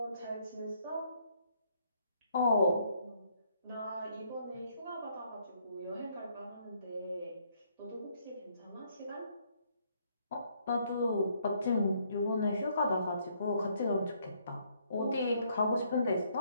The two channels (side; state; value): both; inverted; correlation -0.69